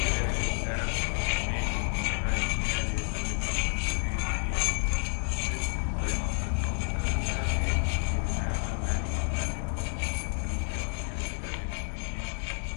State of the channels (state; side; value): silent; right; 56 dB below the other